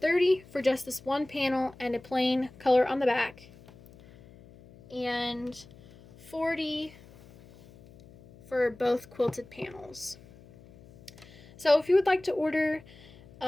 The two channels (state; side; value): noise; left; hum, 23 dB below the sound